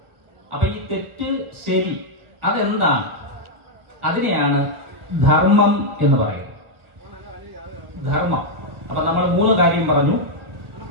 അപ്പൊ ഈ തെറ്റ് ശരി അതെന്താണ്? അതിനെയാണ് ധർമ്മം എന്ന് പറയുന്നത്. ധർമ്മം. അപ്പൊ നമ്മൾ 3 കാര്യം പറഞ്ഞു:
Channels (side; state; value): left; late; 1.2 ms